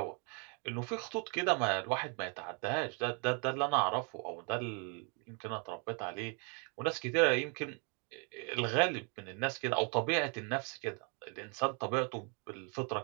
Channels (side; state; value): left; quieter; 35.5 dB